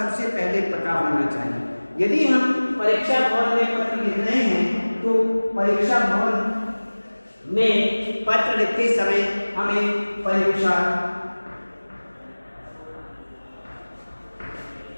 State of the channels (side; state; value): both; inverted; correlation -1.00